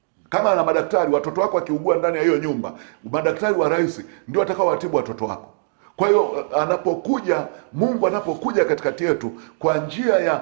Kama na madaktari, watoto wako wakiugua ndani ya hiyo nyumba, madaktari wa rais ndio watakao watibu watoto wako. Kwa hiyo anapokuja Mungu, anapokuja katikati yetu kwa njia ya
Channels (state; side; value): silent; left; digital silence